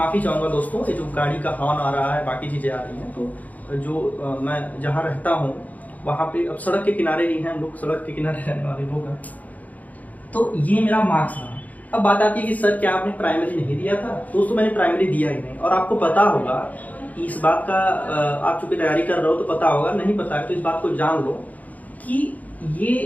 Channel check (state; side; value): late; right; 0.076 ms